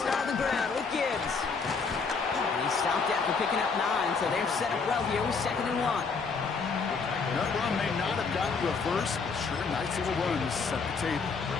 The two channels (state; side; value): quieter; right; 4.9 dB